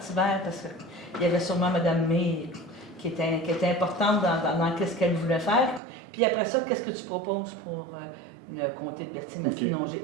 vert, parce qu'il y avait sûrement Mme May qui était importante dans ce qu'elle voulait faire. Puis après ça, qu'est-ce que tu proposes pour le comté de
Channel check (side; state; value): left; drops out; at 5.8 s